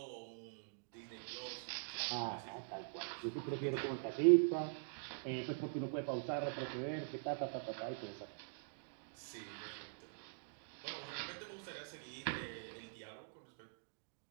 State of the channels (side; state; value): left; silent; digital silence